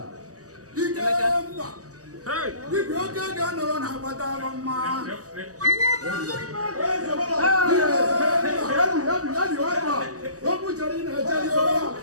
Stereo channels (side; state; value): left; late; 0.66 ms